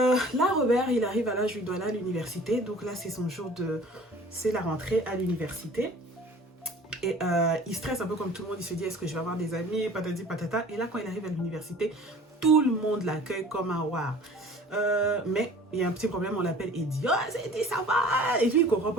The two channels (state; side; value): normal; both; correlation 0.46